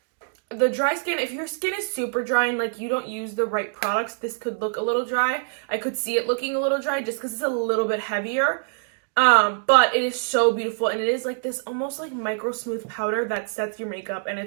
The dry skin, if your skin is super dry and like you don't use the right products, this could look a little dry. I could see it looking a little dry just because it's a little bit heavier. But it is so beautiful, and it is like this almost like micro smooth powder that sets your makeup, and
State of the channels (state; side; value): silent; left; digital silence